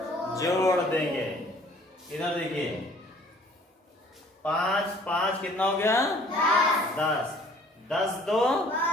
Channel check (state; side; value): normal; both; correlation 0.54